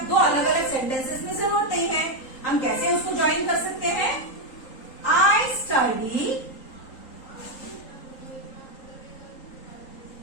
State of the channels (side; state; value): right; late; 3.8 ms